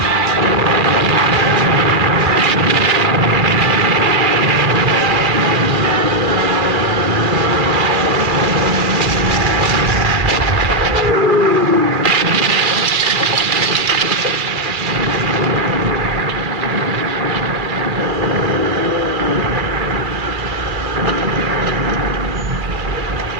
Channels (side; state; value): left; late; 2.3 ms